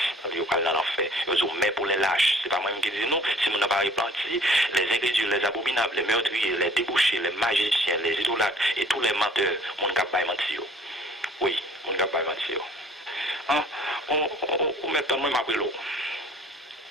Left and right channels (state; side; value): normal; both; correlation 0.53